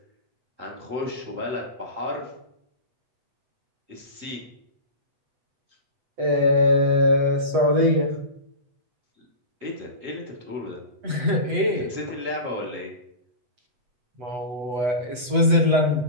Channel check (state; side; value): late; left; 8.0 ms